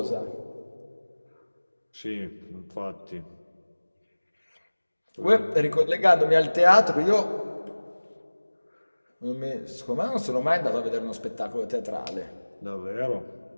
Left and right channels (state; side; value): inverted; both; correlation -1.00